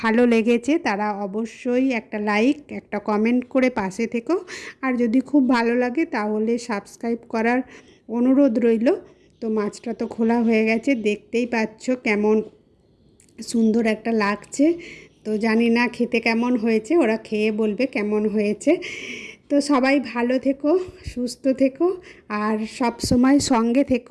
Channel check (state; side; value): identical; both; correlation 1.00